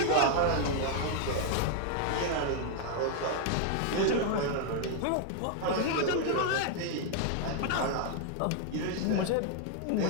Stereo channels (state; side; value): different; both; correlation 0.00